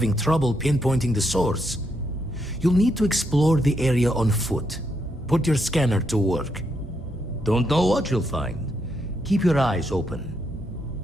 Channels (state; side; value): normal; both; correlation 0.78